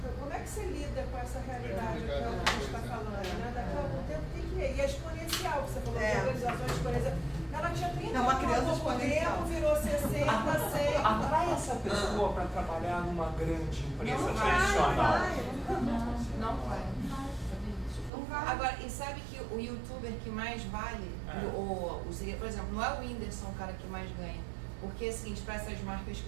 como é que você lida com essa realidade que a gente está falando? Né? Daqui a algum tempo tem que ir. E é exponencial, você falou de organizações exponenciais. Ela tinha 30 anos, há pouco tempo, virou 60, 100. Atrai essa pessoa para trabalhar numa grande empresa tradicional. Não vai. Agora, e sabe que o youtuber que mais vale, por exemplo, não é o Whindersson o cara que mais ganha. Porque, assim, para essas marcas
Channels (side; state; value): left; drops out; at 18.1 s